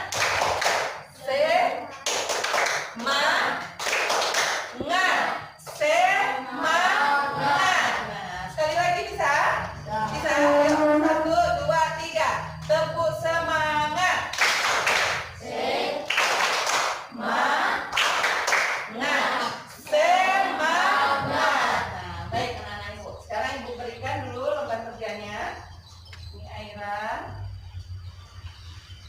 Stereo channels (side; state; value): both; identical; correlation 1.00